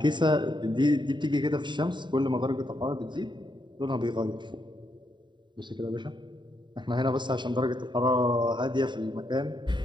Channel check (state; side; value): late; left; 0.23 ms